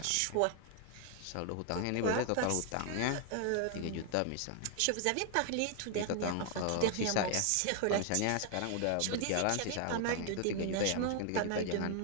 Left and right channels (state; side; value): different; both; correlation 0.00